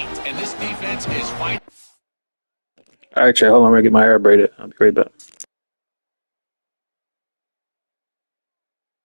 And this defense is fighting. All right, Trey, hold on. I'm going to get my hair braided. I'll be right back.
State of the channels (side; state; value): both; inverted; correlation -1.00